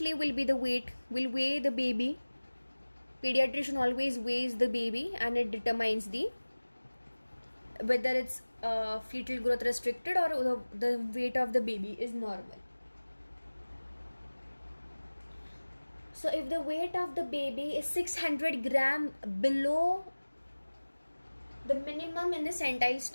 will be the weight. Will weigh the baby. Pediatrician always weighs the baby, and it determines whether it's fetal growth restricted or the weight of the baby is normal. So if the weight of the baby is 600 gram below the minimum in the centile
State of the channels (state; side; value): inverted; both; correlation -1.00